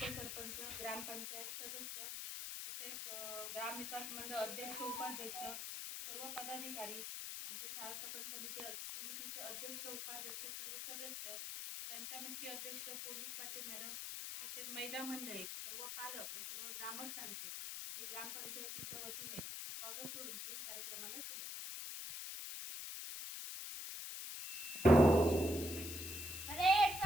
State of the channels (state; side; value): noise; left; hiss, 6 dB below the sound